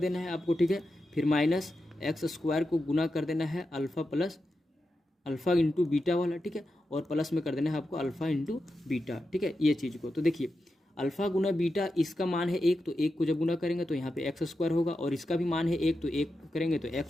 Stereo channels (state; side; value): normal; both; correlation 0.89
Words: है आपको। ठीक है, फिर माइनस एक्स स्क्वायर को गुना कर देना है alpha plus alpha into beta वाला। ठीक है, और प्लस में कर देना है आपको अल्फ़ा इंटू बीटा। ठीक है, ये चीज़ को तो देखिए अल्फ़ा गुना बीटा, इसका मान है एक, तो एक को जब गुना करेंगे तो यहाँ पे एक्स स्क्वायर होगा, और इसका भी मान है एक, तो एक करेंगे तो